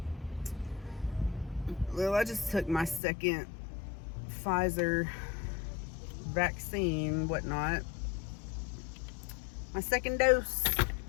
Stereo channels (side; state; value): right; drops out; at 3.0 s